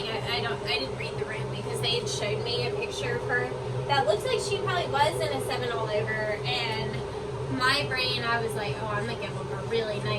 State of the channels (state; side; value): identical; both; correlation 1.00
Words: I didn't read the room because they had showed me a picture of her that looks like she probably was in a 7 all over, and my brain, I was like, oh, I'm gonna give them a really